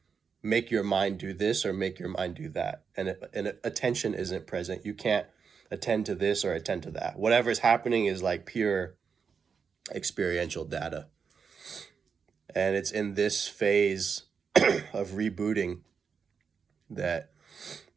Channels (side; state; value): left; quieter; 6.1 dB